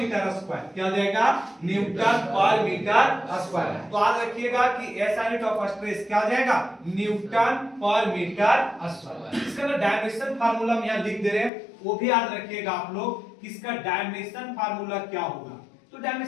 स्क्वायर। क्या आ जाएगा? न्यूटन पर मीटर स्क्वायर। तो याद रखिएगा कि एस यूनिट ऑफ स्ट्रेस क्या आ जाएगा? न्यूटन पर मीटर स्क्वायर। इसका ना डायमेंशन फार्मूला हम यहां लिख दे रहे हैं, वो भी याद रखिएगा आप लोग। इसका डायमेंशन फार्मूला क्या होगा? तो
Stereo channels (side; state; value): right; drops out; at 11.5 s